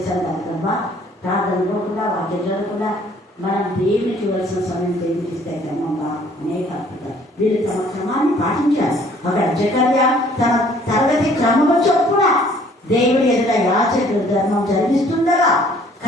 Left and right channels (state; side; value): normal; both; correlation 0.58